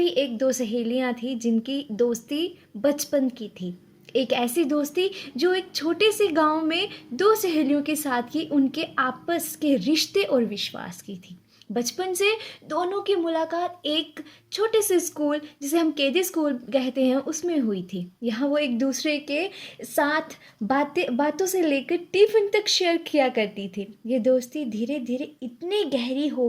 एक दो सहेलियां थी जिनकी दोस्ती बचपन की थी। एक ऐसी दोस्ती जो एक छोटे से गांव में दो सहेलियों के साथ की उनके आपस के रिश्ते और विश्वास की थी। बचपन से दोनों की मुलाकात एक छोटे से स्कूल जिसे हम केजी स्कूल कहते हैं उसमें हुई थी। यहाँ वो एक दूसरे के साथ बातों से लेकर टिफिन तक शेयर किया करती थी। ये दोस्ती धीरे धीरे इतनी गहरी हो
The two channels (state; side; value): identical; both; correlation 1.00